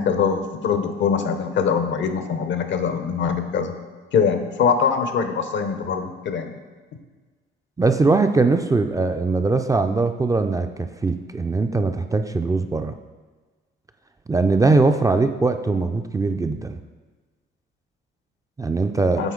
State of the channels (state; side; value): normal; both; correlation 0.58